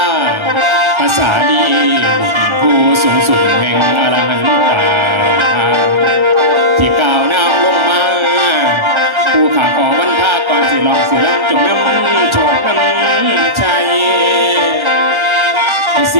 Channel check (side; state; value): left; late; 1.3 ms